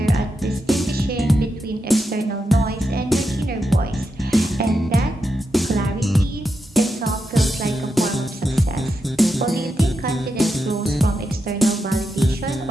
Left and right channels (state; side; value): normal; both; correlation 0.86